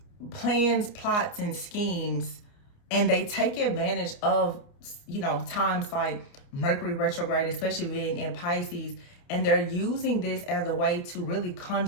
plans, plots, and schemes. And they take advantage of, times like Mercury retrograde, especially being in Pisces. And they're using this as a way to really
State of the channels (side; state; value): right; late; 29 ms